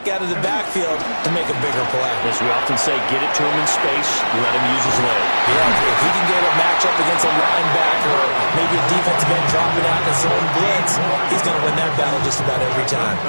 out of the backfield to make a bigger play. As we often say, get it to him in space, let him use his leg. Yeah, if he can get a matchup against a linebacker or maybe a defensive end dropping out in zone blitz, he's going to win that battle just about every time.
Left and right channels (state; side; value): inverted; both; correlation -1.00